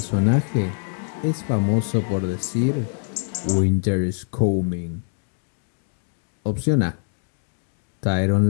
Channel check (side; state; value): right; silent; 55 dB below the other